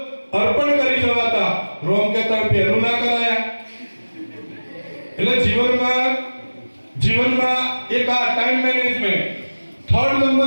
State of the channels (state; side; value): inverted; both; correlation -1.00